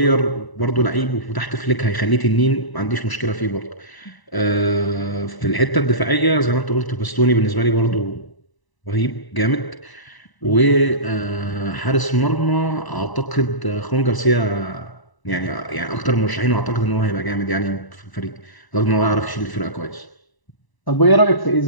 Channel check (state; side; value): late; right; 1.0 ms